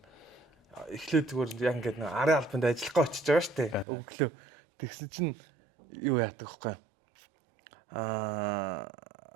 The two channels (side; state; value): left; drops out; at 3.9 s